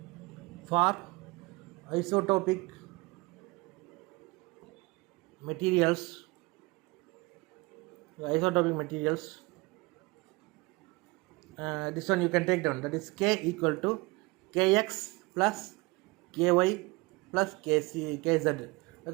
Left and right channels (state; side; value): quieter; left; 24.1 dB